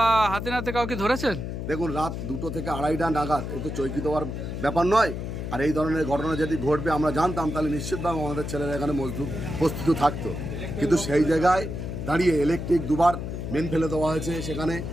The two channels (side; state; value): left; noise; hum, 5 dB below the sound